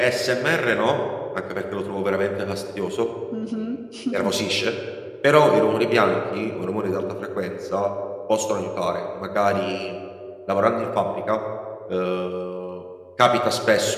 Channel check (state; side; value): identical; both; correlation 1.00